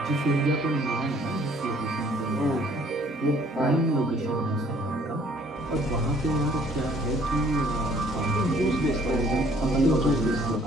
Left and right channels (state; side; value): normal; both; correlation 0.59